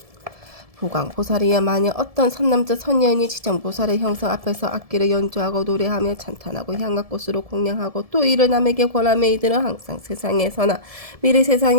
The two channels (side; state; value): left; late; 1.7 ms